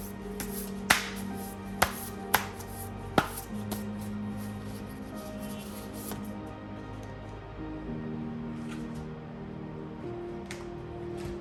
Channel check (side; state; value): both; identical; correlation 1.00